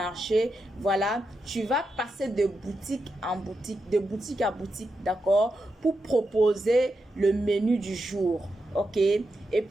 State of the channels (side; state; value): both; normal; correlation 0.86